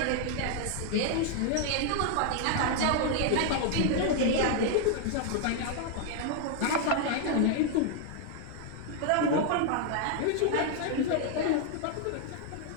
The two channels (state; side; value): different; both; correlation 0.00